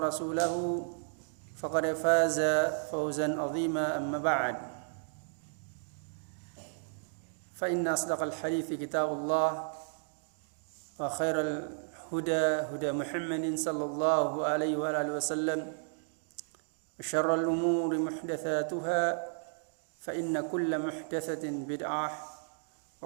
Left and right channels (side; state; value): left; silent; digital silence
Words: فقد فاز فوزا عظيما أما بعد فإن أصدق الحديث كتاب الله وخير الهدى هدى محمد صلى الله عليه وآله وسلم وشر الأمور محدثاتها فإن كل محدثة بدعة